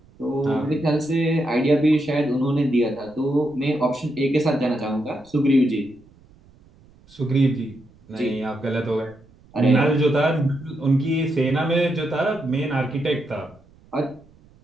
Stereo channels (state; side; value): noise; right; rumble, 28 dB below the sound